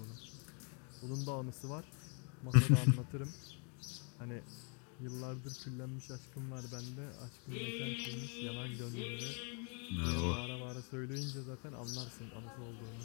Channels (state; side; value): quieter; right; 39.3 dB